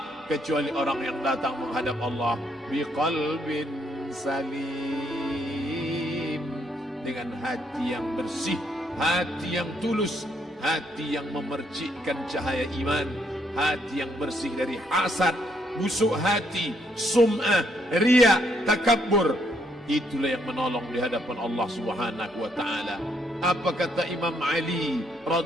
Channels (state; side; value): normal; both; correlation 0.72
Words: kecuali orang yang datang menghadap Allah biqalbin salim, dengan hati yang bersih, hati yang tulus, hati yang memercikkan cahaya iman, hati yang bersih dari hasad, busuk hati, sum'ah, riya, takabbur. Itulah yang menolong di hadapan Allah Subhanahu wa taala. Apa kata Imam Ali